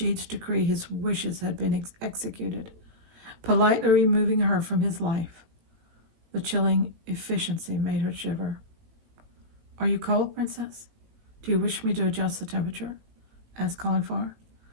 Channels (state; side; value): late; left; 18 ms